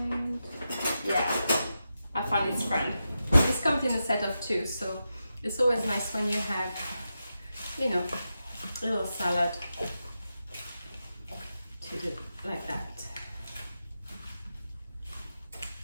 yeah, I found its friend. This comes in a set of 2, so it's always nice when you have, you know, a little salad to do like that.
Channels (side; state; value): both; inverted; correlation -0.89